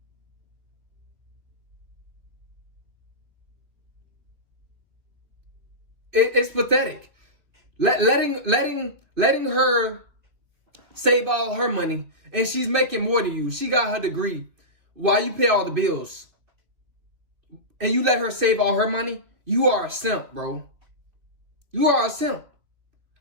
It's pathetic. Letting her save all her money, and she's making more than you. She got her degree while you pay all the bills. And you let her save all her money? You are a simp, bro. You are a simp.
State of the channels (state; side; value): late; left; 2.8 ms